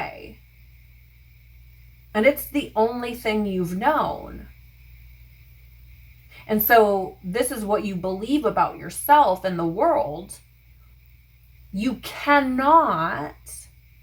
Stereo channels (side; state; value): both; identical; correlation 1.00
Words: and it's the only thing you've known, and so this is what you believe about yourself and the world, you cannot,